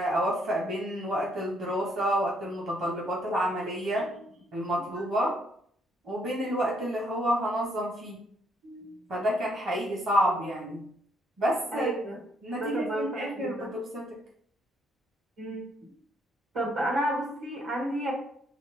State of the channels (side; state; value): both; normal; correlation 0.70